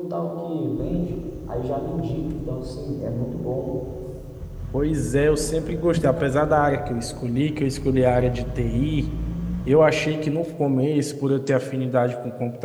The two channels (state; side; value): identical; both; correlation 1.00